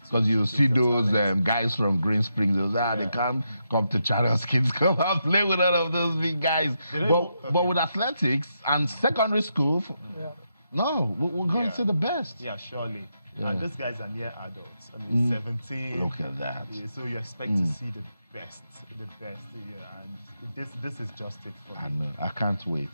you see those guys from Green Springs, they can't come to Channels Kids, come and play with all of those big guys. But with athletics and secondary school, no, we're going to see the best. Yeah, surely. Yeah. And these guys are near adults. I mean, 17. Look at that. Yeah, so you expect to see the best, and this is just it for me. I know. I can't wait.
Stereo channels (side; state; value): both; inverted; correlation -0.83